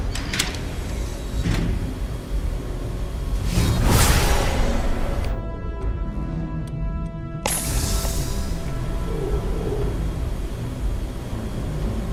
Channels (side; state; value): both; identical; correlation 1.00